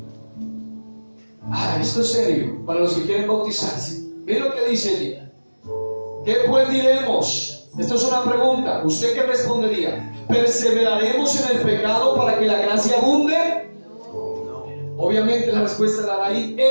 Esto es serio, para los que quieren bautizarse. Mira lo que dice allí. ¿Qué pues diremos? Esto es una pregunta. ¿Usted qué respondería? ¿Perseveraremos en el pecado para que la gracia abunde? No. Obviamente la respuesta la da ahí.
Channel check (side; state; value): both; inverted; correlation -1.00